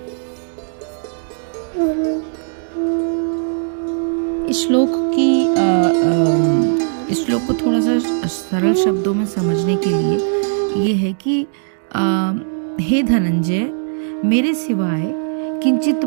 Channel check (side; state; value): left; silent; digital silence